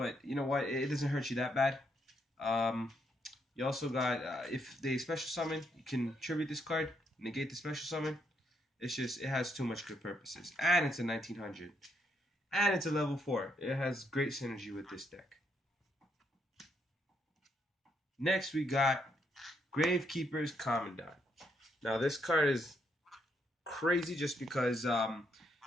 you know what? It doesn't hurt you that bad. You also got if they special summon, you can tribute this card, negate the special summon. It's just it has too much good purposes, and it's a 1900, and it's a level 4. It has great synergy with this deck. Next, we got Gravekeeper's Commandant. Now this card is crazy just because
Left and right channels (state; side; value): normal; both; correlation 0.75